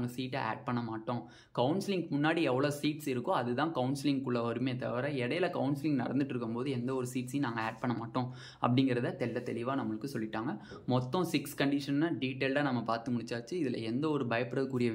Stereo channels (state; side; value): identical; both; correlation 1.00